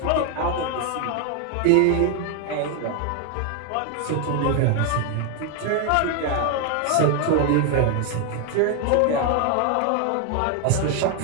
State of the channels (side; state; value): both; different; correlation 0.01